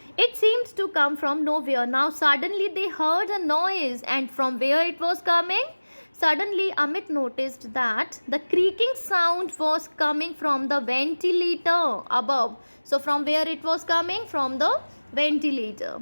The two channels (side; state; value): both; inverted; correlation -1.00